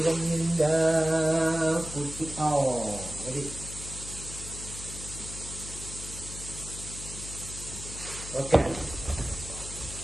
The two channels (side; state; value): left; noise; hum, 11 dB below the sound